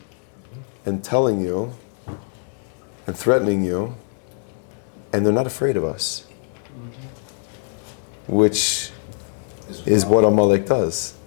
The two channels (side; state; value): right; silent; digital silence